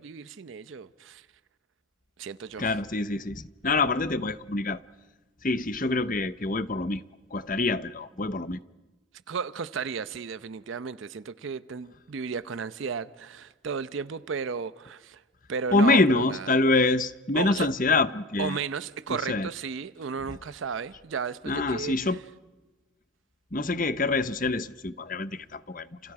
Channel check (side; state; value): both; normal; correlation 0.32